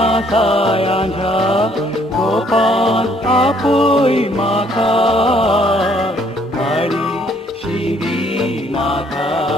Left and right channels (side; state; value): both; normal; correlation 0.64